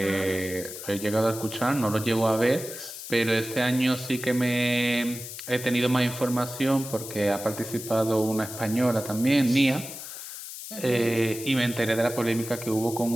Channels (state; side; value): noise; left; hiss, 10 dB below the sound